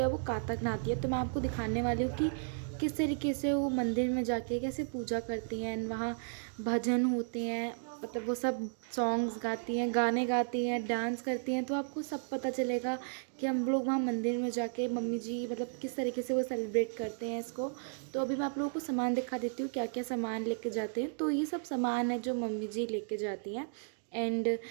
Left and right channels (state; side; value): silent; left; digital silence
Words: वो कातक नहाती है। तो मैं आपको दिखाने वाली हूँ कि किस तरीके से वो मंदिर में जाके कैसे पूजा करती हैं एंड वहाँ भजन होते हैं, मतलब वो सब सॉन्ग्स गाती हैं, गाने गाती हैं, डांस करती हैं। तो आपको सब पता चलेगा कि हम लोग वहाँ मंदिर में जाके मम्मी जी मतलब किस तरीके से वो सेलिब्रेट करते हैं इसको। तो अभी मैं आप लोगों को सामान दिखा देती हूँ क्या क्या सामान लेके जाते हैं। तो ये सब सामान है जो मम्मी जी लेके जाती हैं एंड